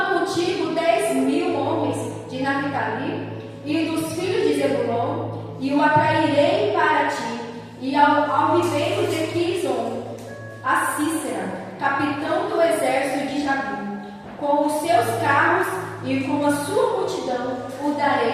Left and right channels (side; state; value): both; identical; correlation 1.00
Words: contigo 10.000 homens de Naphtali e dos filhos de Zebulon e o atrairei para ti e ao ribeiro de Quizon, a Cícera, capitão do exército de Jabim, com os seus carros e com a sua multidão o